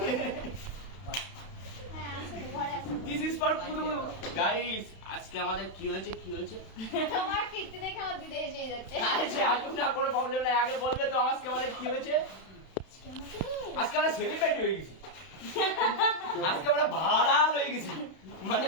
হ্যাঁ আছে তো, ঘরে আছে। দিস ইজ ফর পুরো গাইস। আজকে আমাদের কি হয়েছে কি হয়েছে? তোমার কীর্তি দেখে আমার দিদি এসেই যাচ্ছে। আরে আসুন না, কোনো প্রবলেম নাই, আগে বলবে তো আজকে আমাদের কি হয়েছে। আজকে আমাকে আজকে আমরা সেলিব্রিটি হয়ে গেছি, আজকে আমরা ভাইরাল হয়ে গেছি, মানে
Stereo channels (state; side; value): late; right; 31 ms